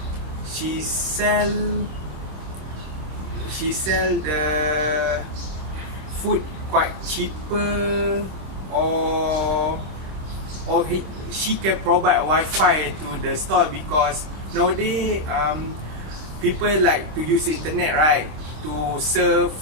she sell the food quite cheaper, or she can provide Wi-Fi to the store because nowadays people like to use internet, right? To surf,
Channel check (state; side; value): late; left; 26 ms